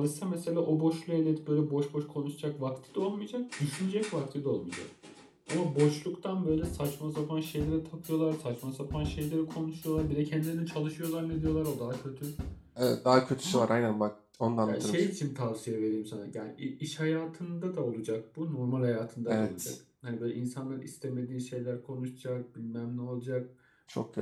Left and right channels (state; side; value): identical; both; correlation 1.00